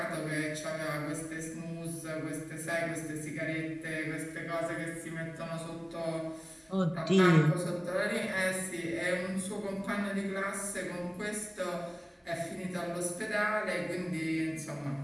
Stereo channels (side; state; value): both; identical; correlation 1.00